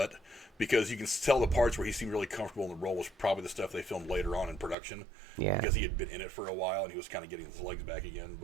because you can tell the parts where he seemed really comfortable in the role was probably the stuff they filmed later on in production. Yeah. Because he had been in it for a while and he was kind of getting his legs back again.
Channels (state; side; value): drops out; left; at 4.8 s